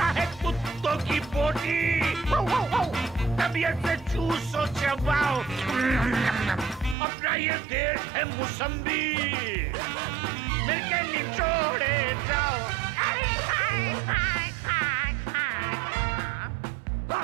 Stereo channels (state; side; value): drops out; left; at 7.0 s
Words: है कुत्तों की बोटी, तबीयत से चूसो चबाओ। अपना ये देश है मौसम्बी, मिलके निचोड़े जाओ।